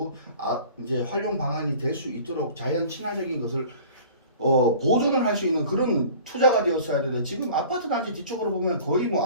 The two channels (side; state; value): both; inverted; correlation -0.45